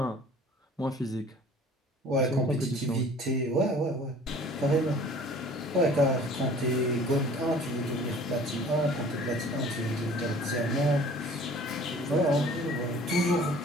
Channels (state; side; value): normal; both; correlation 0.49